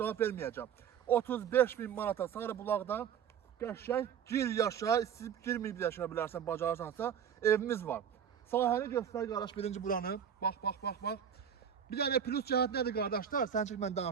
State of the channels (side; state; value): left; quieter; 8.3 dB